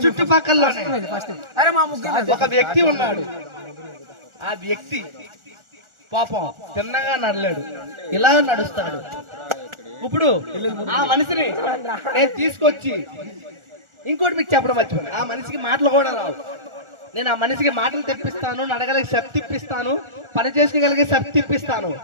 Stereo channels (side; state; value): left; late; 1.4 ms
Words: చుట్టుపక్కలలోనే ఒక వ్యక్తి ఉన్నాడు. ఆ వ్యక్తి పాపం తిన్నగా నడలేడు, ఇలా నడుస్తాడు. ఇప్పుడు ఆ మనిషిని నేను తీసుకొచ్చి ఇంకోటి మీకు చెప్పడం మర్చిపోయాను. ఆ మనిషికి మాటలు కూడా రావు. నేను ఆ మనిషికి మాటలు తెప్పిస్తాను, నడగలిగే శక్తి ఇప్పిస్తాను, పని చేసుకోగలిగే శక్తి ఇప్పిస్తాను.